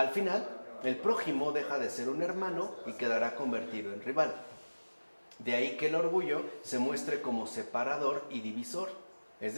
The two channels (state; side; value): inverted; both; correlation -1.00